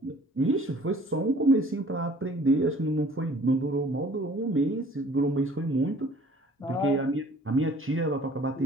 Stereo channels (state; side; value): normal; both; correlation 0.53